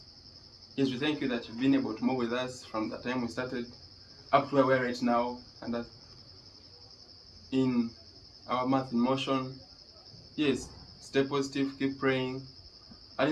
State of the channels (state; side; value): identical; both; correlation 1.00